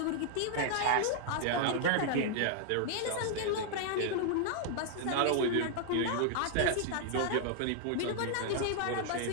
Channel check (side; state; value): both; different; correlation 0.00